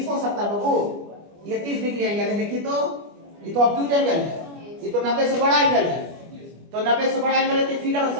हो सकता है बाबू, ये 30 डिग्री एंगल है, देखिए तो ये तो ऑब्ट्यूज एंगल है, ये तो 90 से बड़ा एंगल है, तो 90 से बड़ा एंगल है तो फिगर ऐसा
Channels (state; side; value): late; left; 25 ms